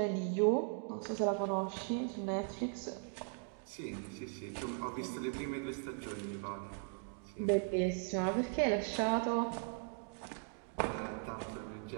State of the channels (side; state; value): left; quieter; 38.2 dB